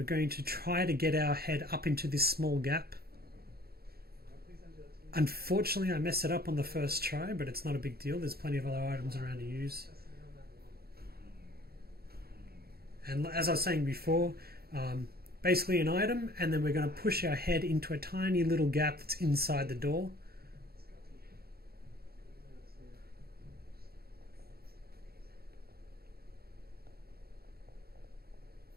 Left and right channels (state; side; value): late; left; 0.45 ms